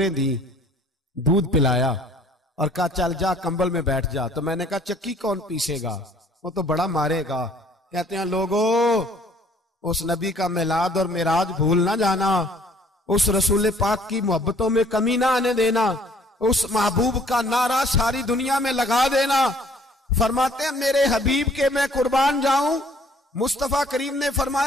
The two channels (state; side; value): normal; both; correlation 0.58